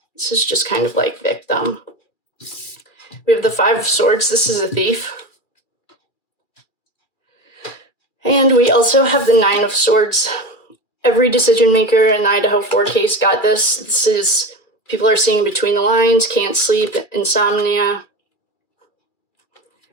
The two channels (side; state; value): right; late; 2.4 ms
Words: This is just kind of like victim. We have the 5 of Swords. This is a thief. And we also have the 9 of Swords. Every decision maker in the Idaho 4 case got this. This is, people are seeing between the lines, can't sleep, insomnia.